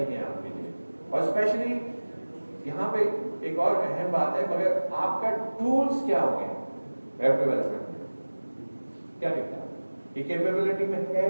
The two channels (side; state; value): both; inverted; correlation -1.00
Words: है आपके लिए। और स्पेशली यहाँ पे एक और अहम बात है, मगर आपका टूल्स क्या होंगे वेब डेवलपमेंट में, क्या दिखता है ये कैपेबिलिटी में है